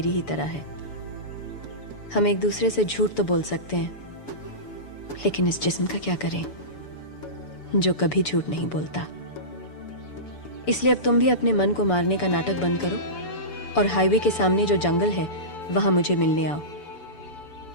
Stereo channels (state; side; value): late; right; 6.9 ms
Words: ही तरह है। हम एक दूसरे से झूठ तो बोल सकते हैं, लेकिन इस जिस्म का क्या करें जो कभी झूठ नहीं बोलता। इसलिए अब तुम भी अपने मन को मारने का नाटक बंद करो और हाईवे के सामने जो जंगल है वहां मुझे मिलने आओ।